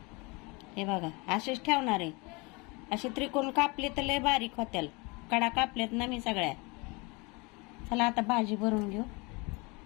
हे बघा असेच ठेवणार आहे. असे त्रिकोण कापले तर लय बारीक होत्याल. कडा कापलेत ना मी सगळ्या. चला आता भाजी भरून घेऊ.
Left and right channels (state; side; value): quieter; right; 27.7 dB